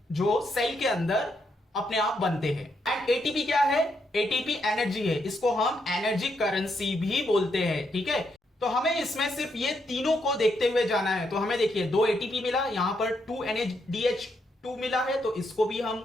जो सेल के अंदर अपने आप बनते हैं। एंड ATP क्या है, ATP एनर्जी है, इसको हम एनर्जी करेंसी भी बोलते हैं, ठीक है। तो हमें इसमें सिर्फ ये तीनों को देखते हुए जाना है। तो हमें देखिए 2 ATP मिला, यहां पर 2 NADH2 मिला है, तो इसको भी हम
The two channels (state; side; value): normal; both; correlation 0.78